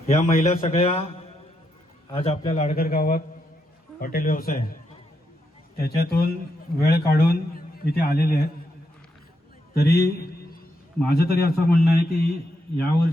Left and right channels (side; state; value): both; normal; correlation 0.81